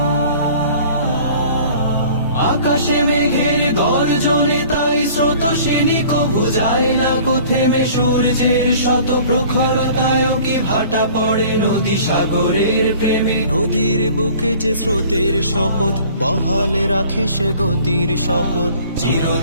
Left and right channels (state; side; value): inverted; both; correlation -0.49